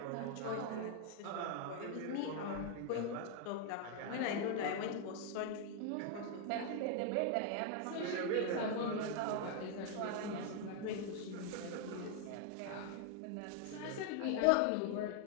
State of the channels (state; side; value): different; both; correlation 0.00